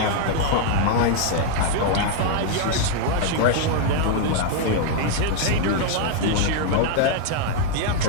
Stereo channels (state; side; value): different; both; correlation 0.00